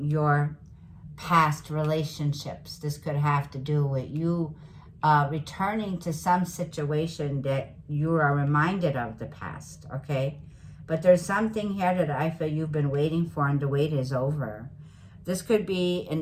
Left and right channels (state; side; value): identical; both; correlation 1.00